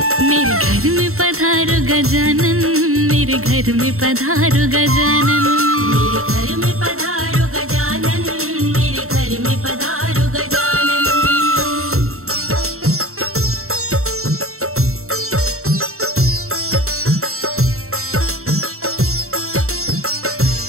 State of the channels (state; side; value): late; left; 0.63 ms